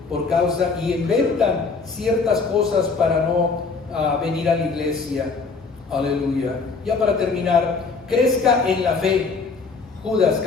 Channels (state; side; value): quieter; right; 4.5 dB